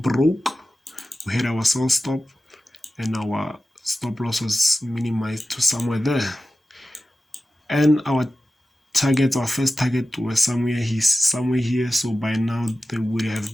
We had our sell stop, and our stop loss was minimized to somewhere there, and our first target was somewhere here, so by now they would have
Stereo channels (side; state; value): both; normal; correlation 0.94